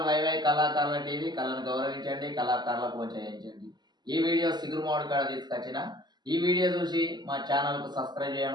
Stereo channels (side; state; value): left; late; 0.21 ms